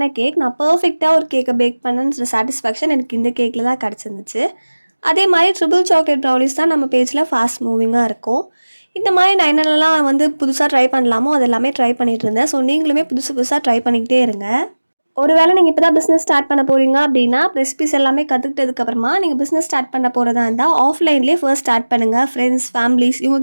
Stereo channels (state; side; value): inverted; both; correlation -1.00